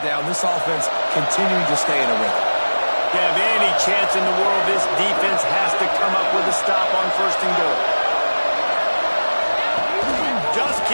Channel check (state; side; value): inverted; both; correlation -1.00